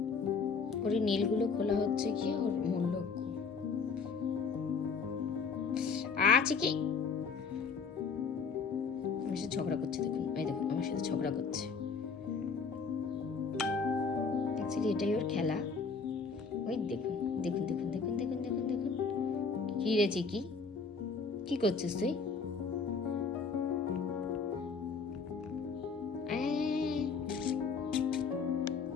ওর নীলগুলো খোলা হচ্ছে কি ওর মূল লক্ষ্য। চিকি আমার সাথে ঝগড়া করছে, দেখুন এই দেখুন আমার সাথে ঝগড়া করছে। অ্যাকচুয়ালি এটাই ওর খেলা। ওই দেখুন দেখুন দেখুন দেখুন দেখুন দেখুন দেখুন কি রে চিকি, কি করছিস তুই?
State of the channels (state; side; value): quieter; right; 5.1 dB